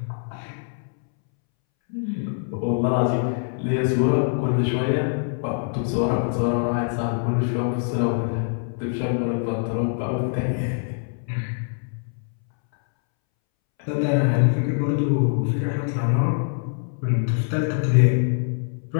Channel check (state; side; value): silent; right; 63 dB below the other